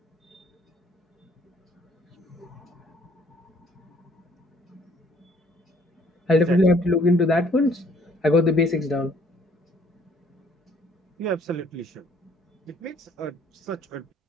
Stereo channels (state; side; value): normal; both; correlation 0.61